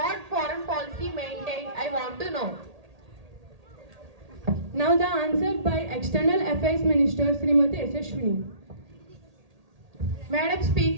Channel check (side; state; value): left; late; 1.8 ms